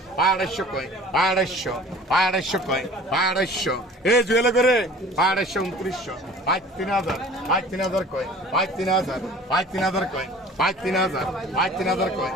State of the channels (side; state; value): both; normal; correlation 0.46